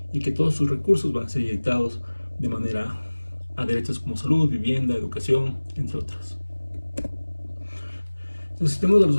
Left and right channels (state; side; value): inverted; both; correlation -1.00